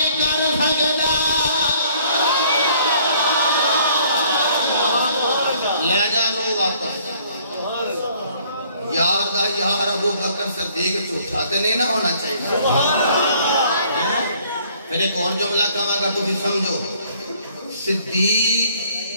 کر سکدا لے جا روح واپس یار دا یار ابو بکر صدیق جھوٹا تے نہیں نہ ہونا چاہیے پھر ایک اور جملہ کہا گا تو بھی سمجھو صدیق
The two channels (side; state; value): both; inverted; correlation -0.60